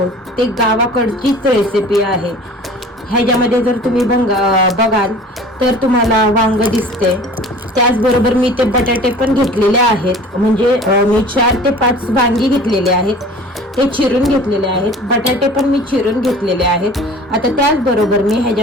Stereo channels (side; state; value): both; normal; correlation 0.44